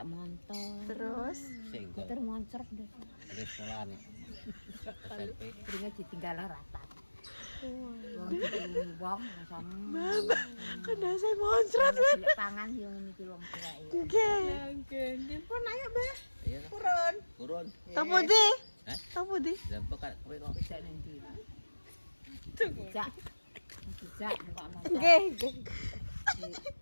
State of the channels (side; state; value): both; inverted; correlation -1.00